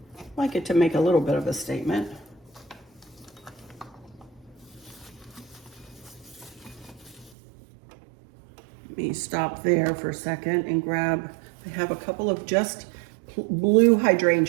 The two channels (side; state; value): left; drops out; at 7.3 s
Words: it to make a little bit of a statement. Let me stop there for a second and grab, I have a couple of just blue